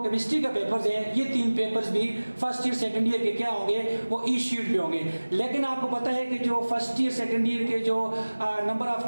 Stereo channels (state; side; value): inverted; both; correlation -1.00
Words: केमिस्ट्री का पेपर्स है ये 3 पेपर्स भी फर्स्ट ईयर सेकंड ईयर के क्या होंगे वो ई शीट पे होंगे। लेकिन आपको पता है कि जो फर्स्ट ईयर सेकंड ईयर के जो नंबर ऑफ